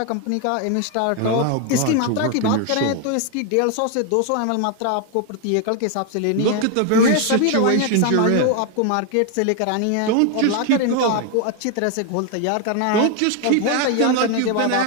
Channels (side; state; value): both; different; correlation 0.01